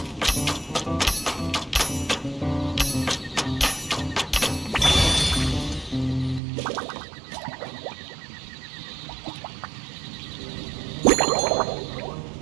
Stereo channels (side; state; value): left; drops out; at 6.4 s